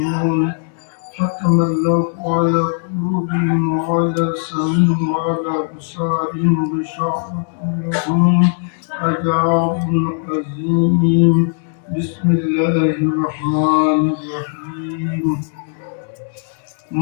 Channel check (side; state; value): right; silent; digital silence